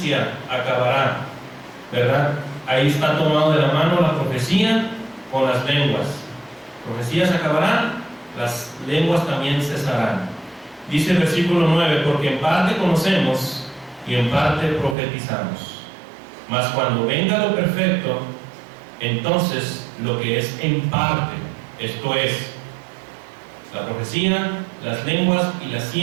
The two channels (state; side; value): drops out; left; at 15.0 s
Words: acabará, ¿verdad? Ahí está tomado de la mano la profecía con las lenguas. Profecías acabarán, las lenguas también cesarán. Dice el versículo 9, porque en parte conocemos y en parte profetizamos. Mas cuando venga lo perfecto, entonces lo que es en parte, esto es, la profecía, las lenguas y la